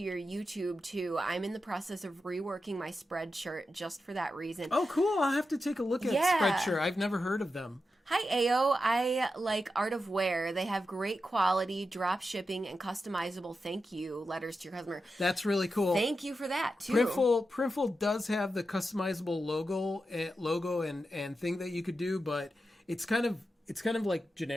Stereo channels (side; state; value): both; normal; correlation 0.89